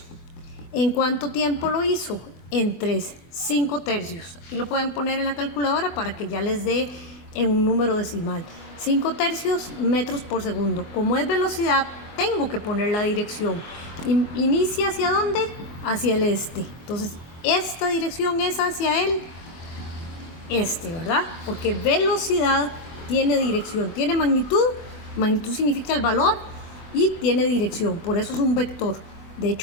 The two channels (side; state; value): right; late; 24 ms